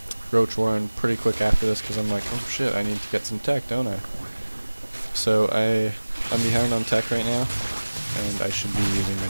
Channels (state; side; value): inverted; both; correlation -1.00